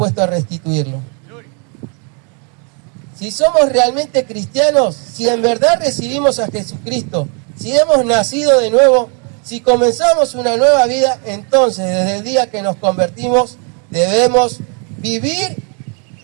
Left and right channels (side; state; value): left; quieter; 37.9 dB